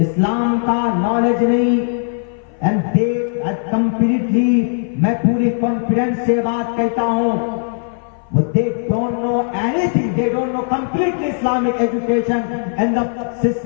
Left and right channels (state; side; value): silent; right; 59 dB below the other